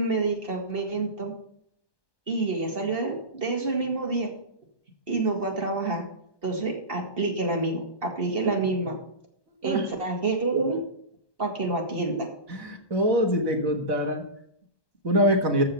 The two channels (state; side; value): late; right; 1.2 ms